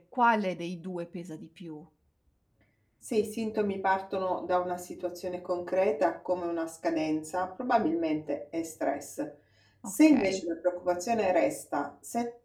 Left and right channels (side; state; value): both; identical; correlation 1.00